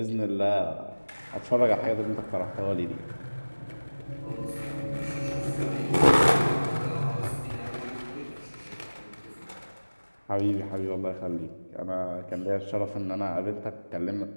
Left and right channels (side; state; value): both; inverted; correlation -1.00